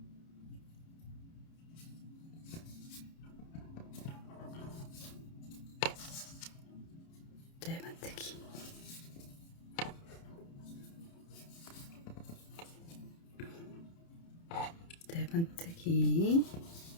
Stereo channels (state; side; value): late; right; 30 ms